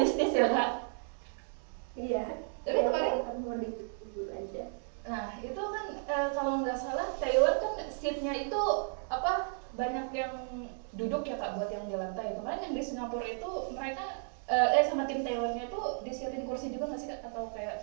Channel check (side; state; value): left; silent; 55 dB below the other